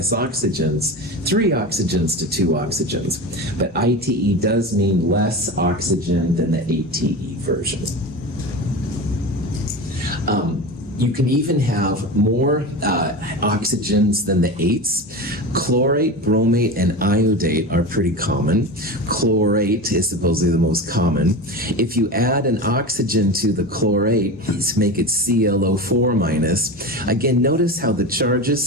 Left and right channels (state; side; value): normal; both; correlation 0.26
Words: oxygens, 3 oxygens to 2 oxygens. But ITE does mean less oxygen than the ATE version. You can even have more oxygens than the ates. Chlorate, bromate, and iodate are pretty common. Chlorate is supposedly the most common. If you add an oxygen to the chlorate, you make it ClO4 minus. Again, notice how the charges